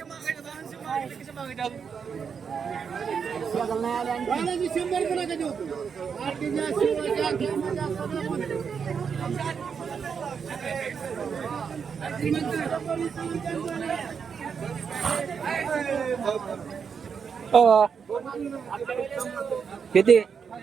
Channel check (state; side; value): quieter; left; 6.5 dB